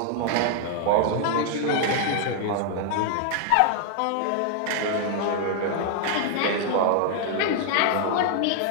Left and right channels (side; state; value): both; different; correlation 0.00